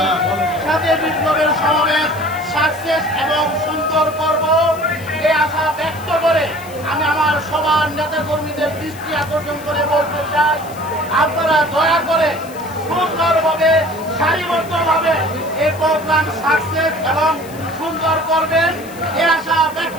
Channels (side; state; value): left; noise; hiss, 19 dB below the sound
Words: সাথে বিপ্লবের সমাবেশ সাকসেস এবং সুন্দর করব এই আশা ব্যক্ত করে আমি আমার সবার নেতা কর্মীদের দৃষ্টি আকর্ষণ করে বলতে চাই, আপনারা দয়া করে সুন্দরভাবে সারিবদ্ধভাবে এই প্রোগ্রাম সাকসেস এবং সুন্দর করবেন এই আশা